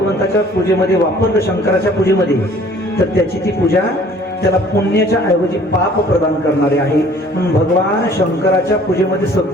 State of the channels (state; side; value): normal; both; correlation 0.54